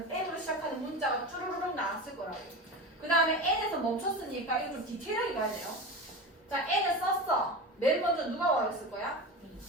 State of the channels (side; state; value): both; normal; correlation 0.27